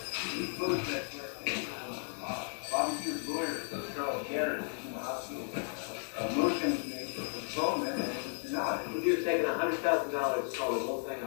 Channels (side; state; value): right; silent; 55 dB below the other